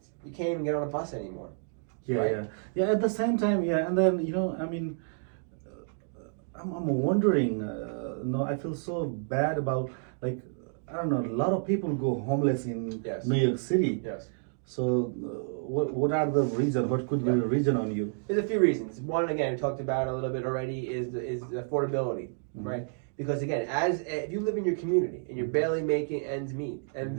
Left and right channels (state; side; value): silent; left; digital silence